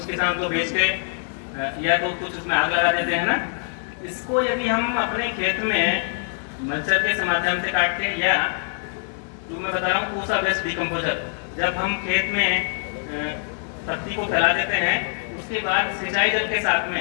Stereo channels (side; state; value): right; silent; 61 dB below the other